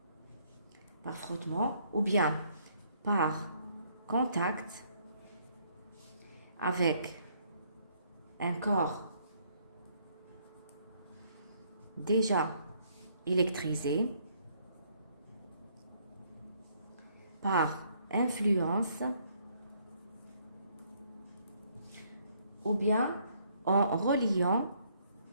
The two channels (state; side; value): inverted; both; correlation -0.67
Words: ou bien par contact avec un corps déjà électrisé, par influence ou bien en reliant